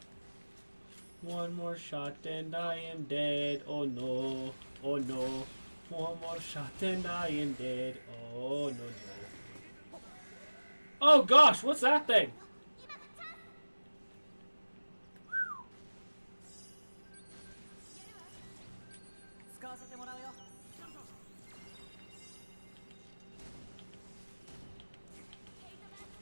One more shot and I am dead. Oh no. Oh no. One more shot and I am dead. Oh no no. Oh gosh, what's that thing?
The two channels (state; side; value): inverted; both; correlation -1.00